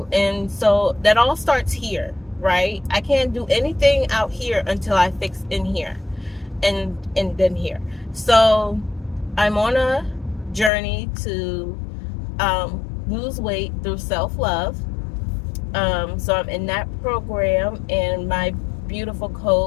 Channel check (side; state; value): right; drops out; at 10.7 s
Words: And so that all starts here, right? I can't do anything out here until I fix in here, and then here. So I'm on a journey to lose weight through self-love. So I'm in that program, and my beautiful